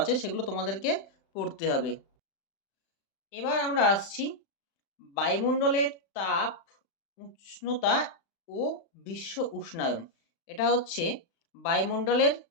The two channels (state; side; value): late; right; 35 ms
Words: সেগুলো তোমাদেরকে পড়তে হবে। এবার আমরা আসছি বায়ুমণ্ডলের তাপ, উষ্ণতা ও বিশ্ব উষ্ণায়ন। এটা হচ্ছে বায়ুমণ্ডলের